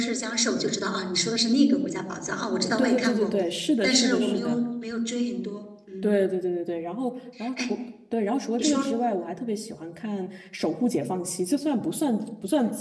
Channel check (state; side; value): identical; both; correlation 1.00